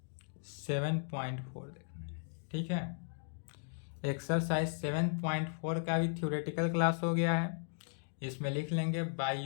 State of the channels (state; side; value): silent; right; digital silence